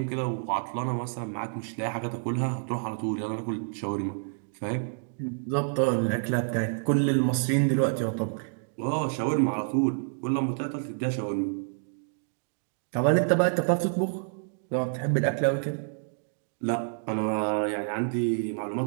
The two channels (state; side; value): silent; left; digital silence